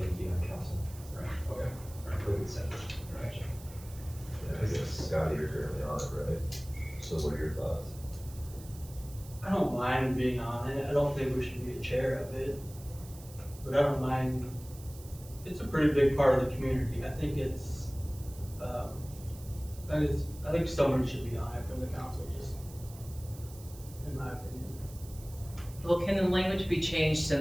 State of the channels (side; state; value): right; noise; hiss, 19 dB below the sound